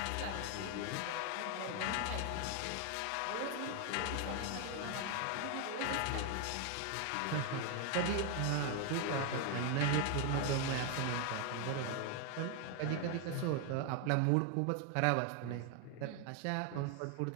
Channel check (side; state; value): both; different; correlation 0.01